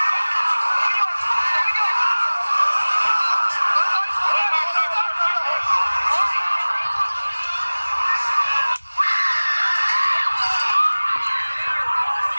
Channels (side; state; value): both; inverted; correlation -1.00